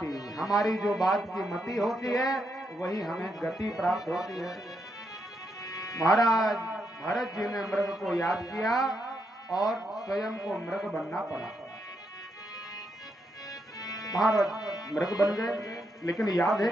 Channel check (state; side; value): normal; both; correlation 0.80